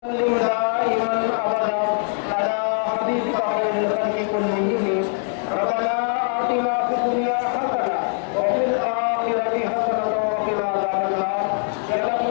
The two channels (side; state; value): right; silent; 55 dB below the other